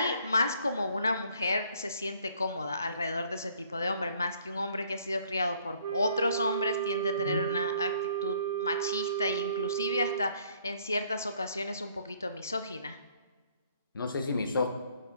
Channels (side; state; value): both; inverted; correlation -0.62